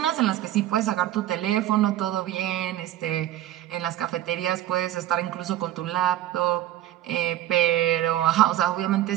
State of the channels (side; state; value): left; quieter; 13.3 dB